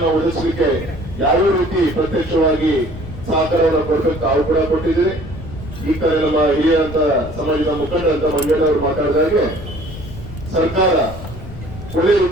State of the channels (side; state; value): left; noise; rumble, 12 dB below the sound